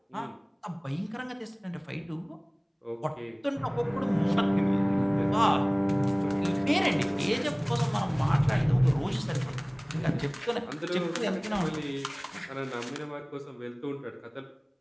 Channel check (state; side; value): identical; both; correlation 1.00